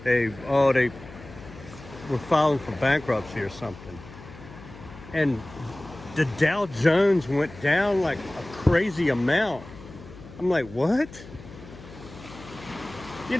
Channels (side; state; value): left; noise; hum, 17 dB below the sound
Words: they were filing for bankruptcy or something, and the Dow Jones went down like a crazy amount. I'm like, what?